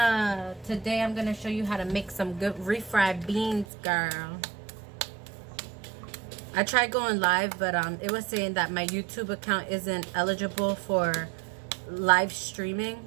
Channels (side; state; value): left; drops out; at 3.7 s